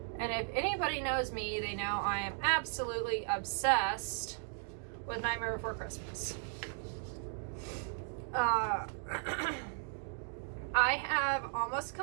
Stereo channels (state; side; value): silent; left; 54 dB below the other